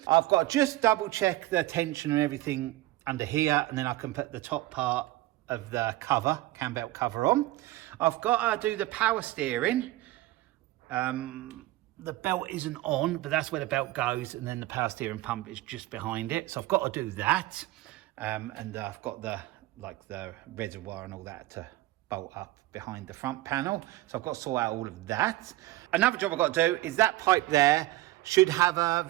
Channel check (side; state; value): left; quieter; 17.4 dB